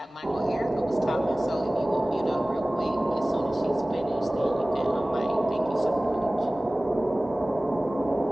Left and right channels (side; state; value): both; normal; correlation 0.98